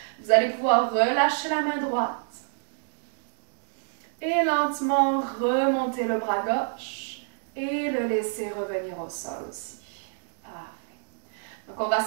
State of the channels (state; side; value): silent; left; digital silence